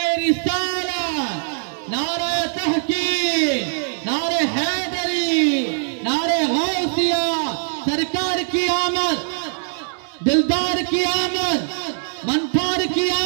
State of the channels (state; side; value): silent; left; digital silence